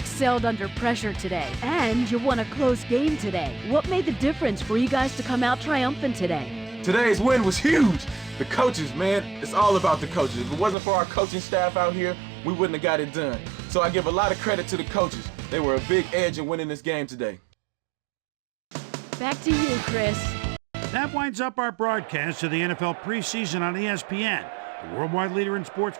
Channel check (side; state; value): left; drops out; at 10.8 s